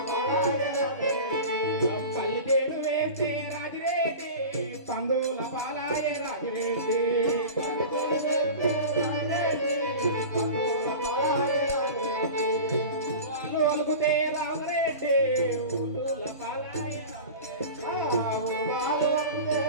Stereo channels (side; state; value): both; inverted; correlation -0.33